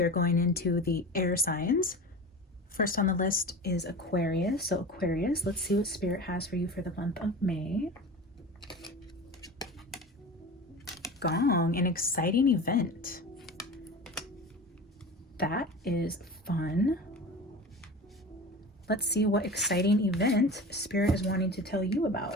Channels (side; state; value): both; normal; correlation 0.33